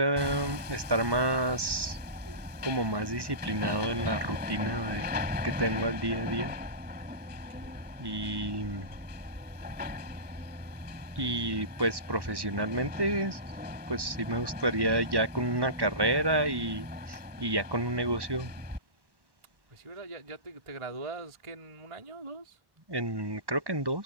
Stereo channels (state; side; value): late; left; 1.1 ms